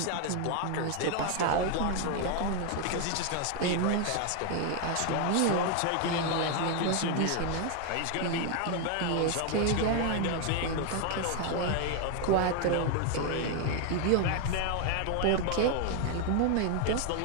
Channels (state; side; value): different; both; correlation 0.01